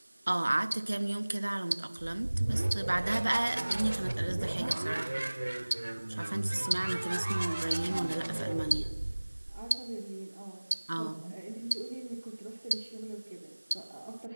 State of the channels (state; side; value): inverted; both; correlation -1.00